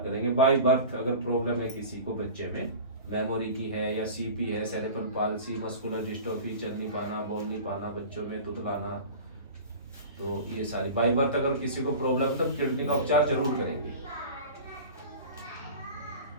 करेंगे। बाय बर्थ अगर प्रॉब्लम है किसी को बच्चे में, मेमोरी की है या सीपी है, सेरेब्रल पाल्सी, मस्कुलर डिस्ट्रोफी, चल नहीं पाना, बोल नहीं पाना, बच्चों में तुतलाना, तो ये सारी बाय बर्थ अगर किसी को प्रॉब्लम है तो किडनी का उपचार जरूर करेंगे।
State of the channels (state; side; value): inverted; both; correlation -0.37